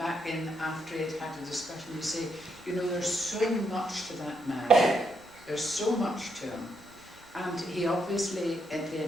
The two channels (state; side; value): normal; both; correlation 0.78